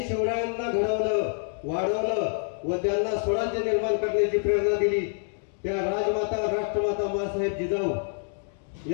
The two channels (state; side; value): silent; right; 60 dB below the other